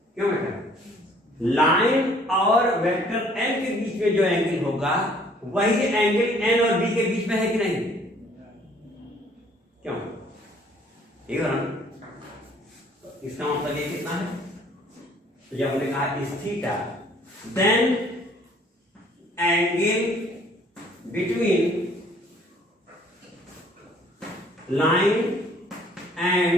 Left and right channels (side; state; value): both; normal; correlation 0.58